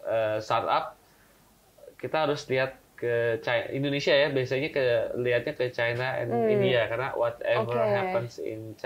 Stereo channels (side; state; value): both; identical; correlation 1.00